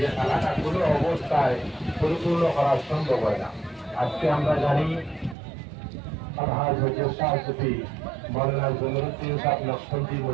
খালাটা কোনো অবস্থায় পরিপূর্ণ করা সম্ভব হয় না। আজকে আমরা জানি আলহাজ হজরত শাহ সুফি মৌলানা জমিরুদ্দিন সাহেব নকশবন্দি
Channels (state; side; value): drops out; left; at 5.4 s